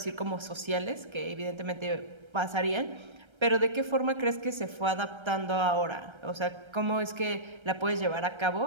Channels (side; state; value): left; late; 1.3 ms